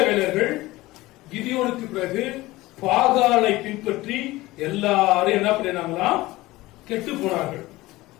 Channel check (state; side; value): quieter; right; 19.0 dB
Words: கிதியோனுக்கு பிறகு பாகாலை பின்பற்றி எல்லாரும் என்ன பண்ணினாங்களாம்? கெட்டு போனார்கள்.